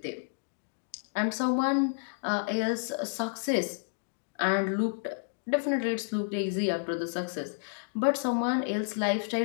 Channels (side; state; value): right; silent; digital silence